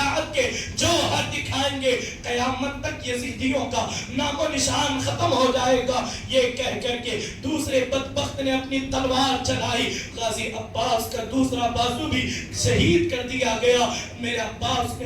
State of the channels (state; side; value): identical; both; correlation 1.00